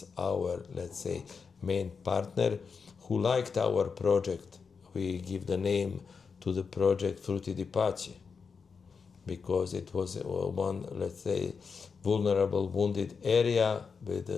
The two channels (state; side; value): quieter; right; 5.5 dB